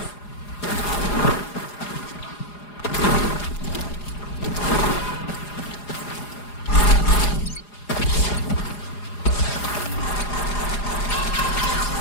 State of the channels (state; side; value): late; right; 4.9 ms